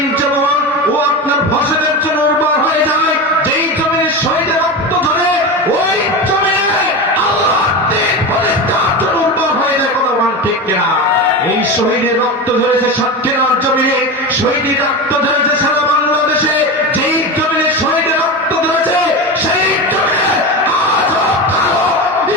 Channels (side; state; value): both; normal; correlation 0.23